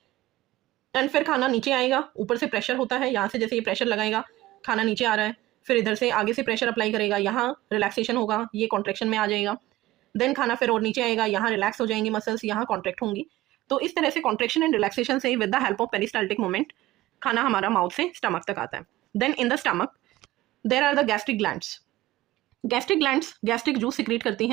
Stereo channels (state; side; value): quieter; left; 16.7 dB